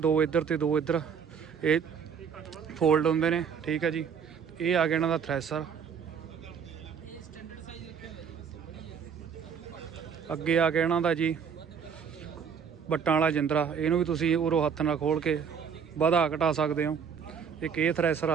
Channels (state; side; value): quieter; left; 6.9 dB